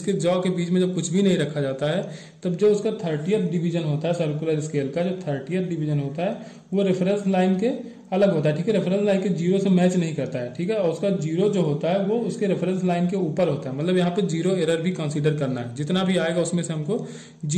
जॉ के बीच में जब कुछ भी नहीं रखा जाता है, तब जो उसका 30th डिवीजन होता है सर्कुलर स्केल का, जो 30th डिवीजन होता है वो रेफरेंस लाइन के अलग होता है, ठीक है, रेफरेंस लाइन के जीरो से मैच नहीं करता है, ठीक है, और उसका जीरो जो होता है वो उसके रेफरेंस लाइन के ऊपर होता है, मतलब यहाँ पे जीरो एरर भी कंसीडर करना है, जितना भी आएगा उसमें से हमको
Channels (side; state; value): both; identical; correlation 1.00